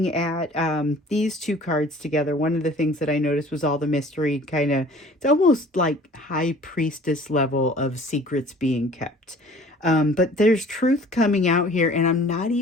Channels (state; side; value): normal; both; correlation 0.50